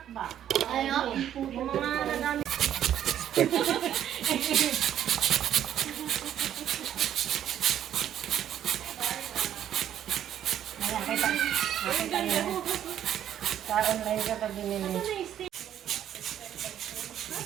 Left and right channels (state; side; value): quieter; left; 10.6 dB